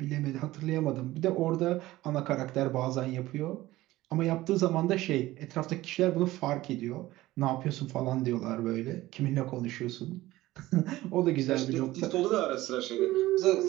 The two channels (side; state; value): left; quieter; 17.1 dB